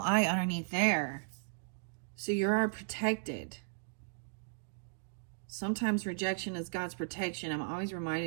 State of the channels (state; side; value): silent; left; digital silence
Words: underneath there. So you are protected. Sometimes rejection is God's protection. I'm always